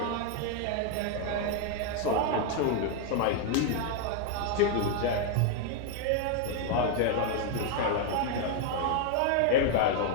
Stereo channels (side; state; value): both; different; correlation 0.00